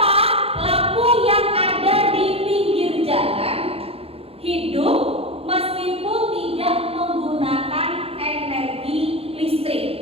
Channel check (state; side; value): late; left; 0.28 ms